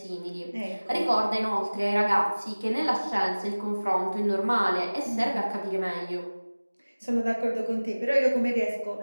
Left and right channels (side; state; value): both; inverted; correlation -1.00